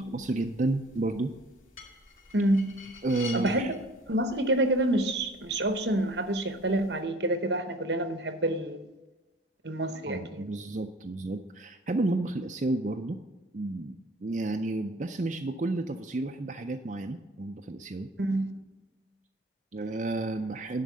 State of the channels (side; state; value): both; normal; correlation 0.49